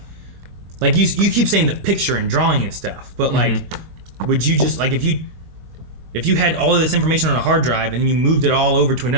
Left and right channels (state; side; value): late; left; 23 ms